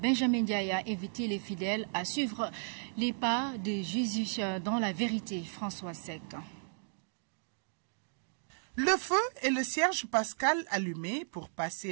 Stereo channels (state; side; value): silent; left; digital silence